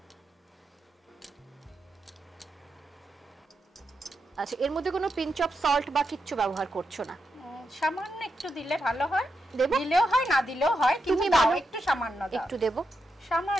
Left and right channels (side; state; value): both; normal; correlation 0.85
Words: আচ্ছা এর মধ্যে কোনো পিঞ্চ অফ সল্ট বা কিচ্ছু ব্যবহার করছো না? সামান্য একটু দিলে ভালো হয়, দিলেও হয় না দিলেও হয়, কিন্তু দাও একটু সামান্য দাও। একটু দেব,